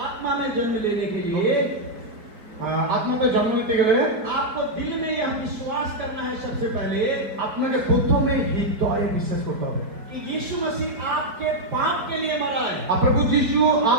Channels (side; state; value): left; late; 4.6 ms